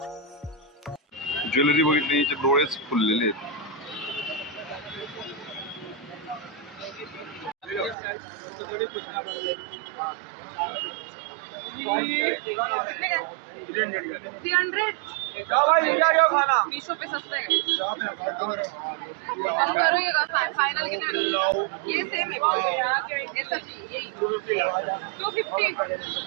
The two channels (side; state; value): left; drops out; at 8.0 s